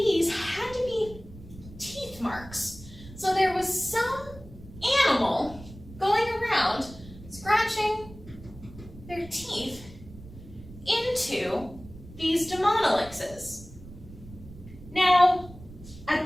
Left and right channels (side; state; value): right; noise; rumble, 17 dB below the sound